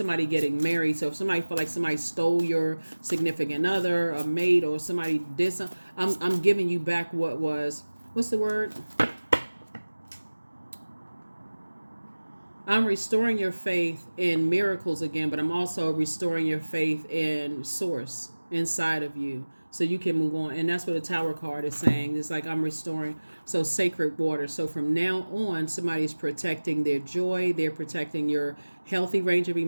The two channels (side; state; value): both; inverted; correlation -1.00